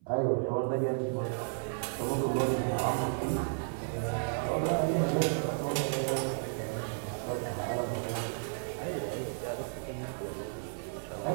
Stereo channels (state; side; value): silent; left; 56 dB below the other